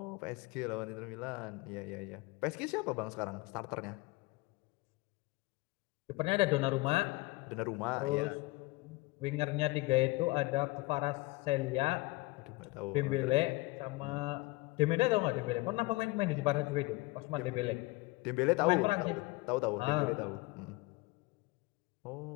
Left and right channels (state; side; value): quieter; right; 22.7 dB